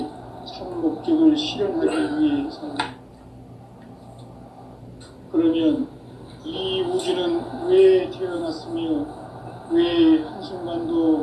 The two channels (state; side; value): identical; both; correlation 1.00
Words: 참 목적을 실현하기 위해 산다. 그러면 이 우주는 왜 태어났으며 왜